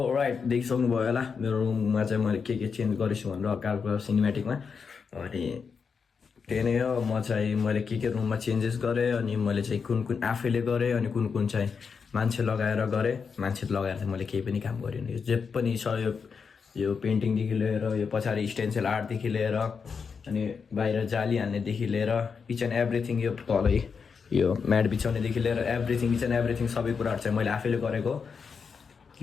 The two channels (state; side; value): quieter; right; 5.8 dB